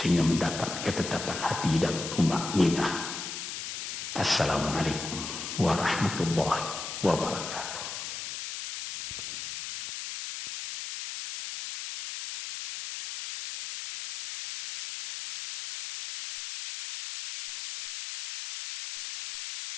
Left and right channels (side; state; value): left; noise; hiss, 7 dB below the sound